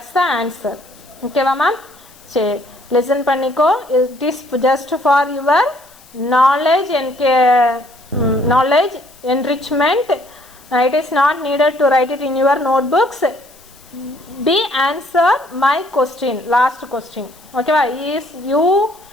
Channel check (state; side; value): noise; left; hiss, 26 dB below the sound